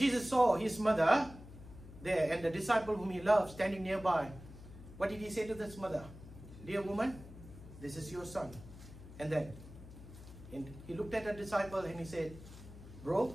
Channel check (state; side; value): noise; left; hum, 16 dB below the sound